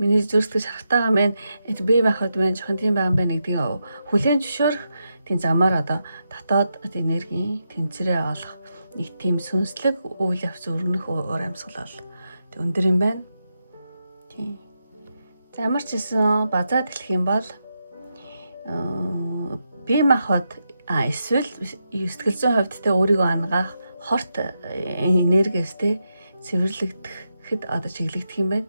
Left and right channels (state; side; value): inverted; both; correlation -0.86